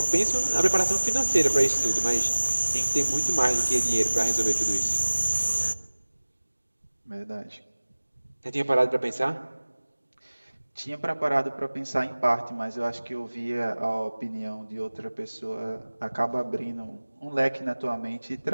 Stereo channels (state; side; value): inverted; both; correlation -1.00